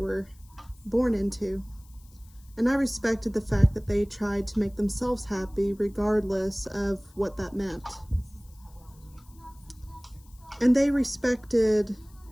born into. And I respected the fact that they tried to make themselves happy regardless of what that meant. And they respected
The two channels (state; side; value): noise; left; hiss, 28 dB below the sound